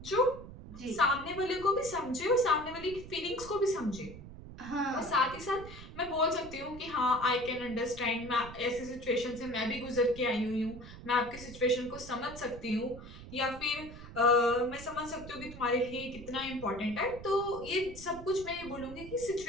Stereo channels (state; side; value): noise; right; rumble, 14 dB below the sound